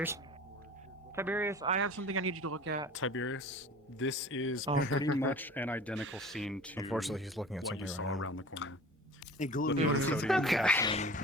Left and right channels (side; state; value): both; normal; correlation 0.41